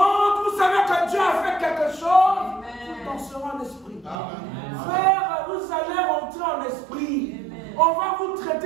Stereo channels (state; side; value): drops out; left; at 4.2 s